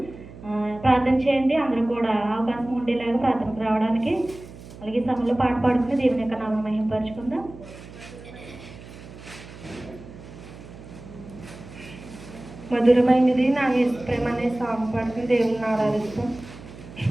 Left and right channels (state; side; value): noise; right; hum, 16 dB below the sound